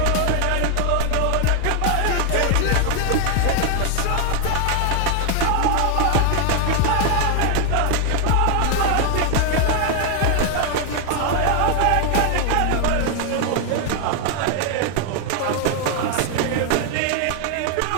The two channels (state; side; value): different; both; correlation 0.00